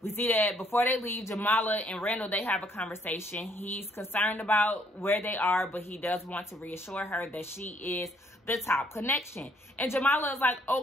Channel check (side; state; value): both; normal; correlation 0.67